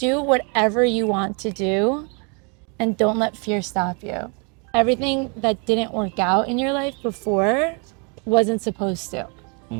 whatever you want to do and don't let fear stop you. Everything that didn't work out in your life before wasn't supposed to.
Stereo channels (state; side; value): quieter; left; 34.9 dB